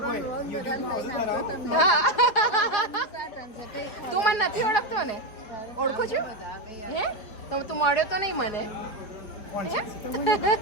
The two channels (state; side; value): late; right; 4.5 ms